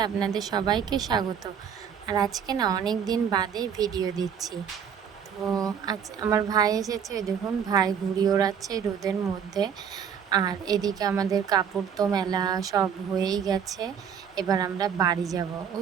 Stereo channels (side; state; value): left; quieter; 7.7 dB